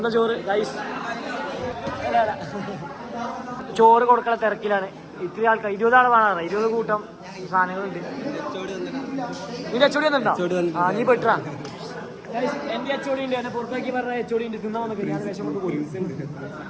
ചോറ് ഗൈസ്. ചോറ് കൊടുക്കണ തിരക്കിലാണ്. ഇത്തിരി ആൾക്കാർ 20 ആൾ വേണം. 20 കൂട്ടം സാധനങ്ങളുണ്ട്. നിന്റെ അച്ചോടി വന്നിട്ടുണ്ടോ? നീ പെട്ടാ. എന്റെ അച്ചോടി ഉണ്ട്. എന്നെ പുറത്താക്കി പറഞ്ഞ അച്ചോടി ഉണ്ട്. തിന്നാ വന്നൊക്കെ ഞാൻ വേഷം കൊണ്ട് പോയി.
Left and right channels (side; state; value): both; identical; correlation 1.00